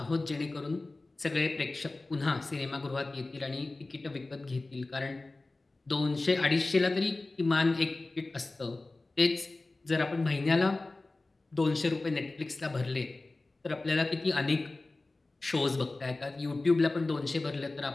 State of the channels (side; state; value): right; quieter; 3.1 dB